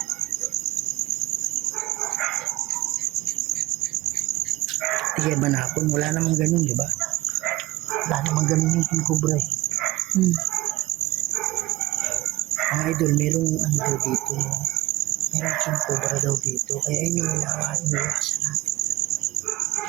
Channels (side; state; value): left; quieter; 19.4 dB